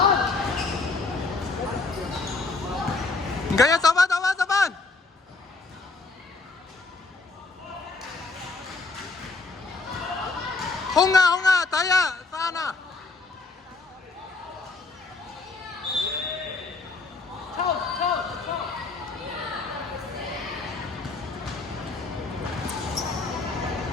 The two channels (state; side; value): quieter; right; 3.7 dB